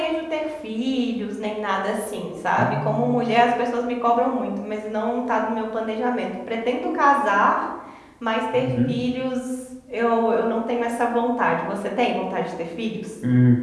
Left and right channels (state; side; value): identical; both; correlation 1.00